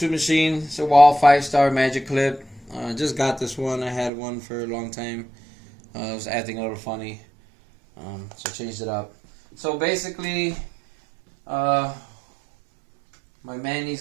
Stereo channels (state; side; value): drops out; left; at 4.1 s